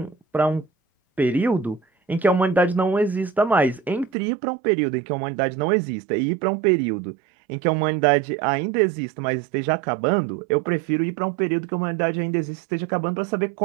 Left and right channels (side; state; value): left; drops out; at 4.1 s